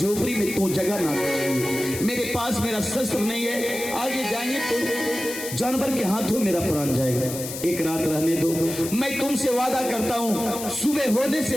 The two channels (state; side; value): noise; left; hiss, 8 dB below the sound